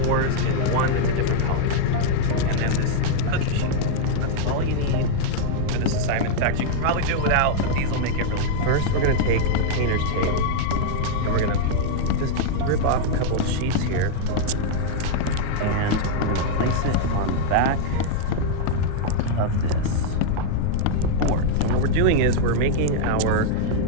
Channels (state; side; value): different; both; correlation -0.01